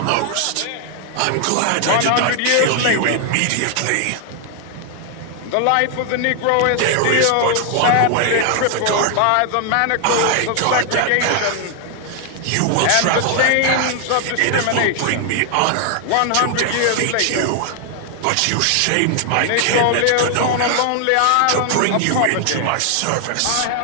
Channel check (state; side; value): different; both; correlation 0.00